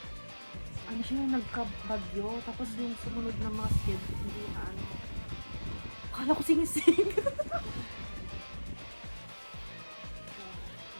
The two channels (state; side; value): inverted; both; correlation -1.00